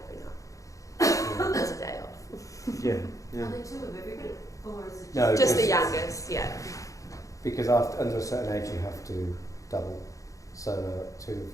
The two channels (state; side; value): late; right; 0.16 ms